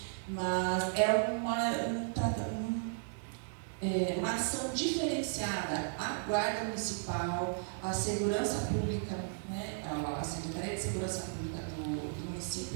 mas é uma ação diferenciada. A Guarda Municipal, a Segurança Pública, né, a Secretaria de Segurança Pública do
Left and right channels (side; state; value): left; silent; digital silence